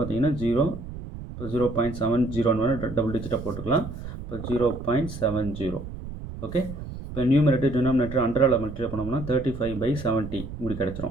0, இப்போ 0.70 டபுள் டிஜிட்டாக போட்டுக்கலாம். இப்போ 0.70. ஓகே, இப்போ நியூமரேட்டர் டினாமினேட்டர் அண்டரால் மல்டிப்ளை பண்ணோம்னா 35/70 இப்படி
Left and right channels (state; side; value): noise; right; rumble, 10 dB below the sound